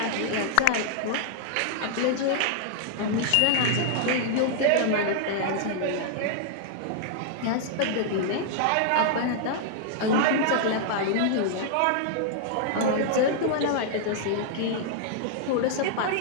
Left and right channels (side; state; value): both; different; correlation -0.01